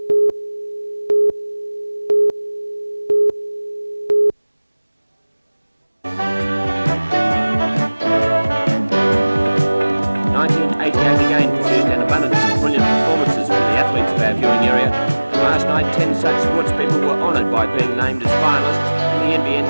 Being named as finalists in the NBN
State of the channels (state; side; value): inverted; both; correlation -1.00